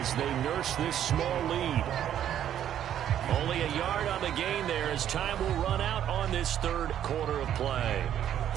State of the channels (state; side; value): quieter; left; 10.5 dB